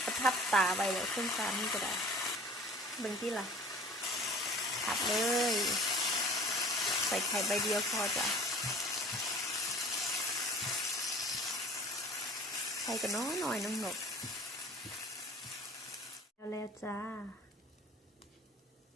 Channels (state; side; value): normal; both; correlation 0.46